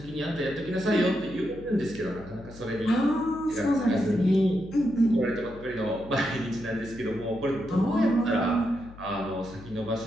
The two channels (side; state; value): left; noise; hum, 18 dB below the sound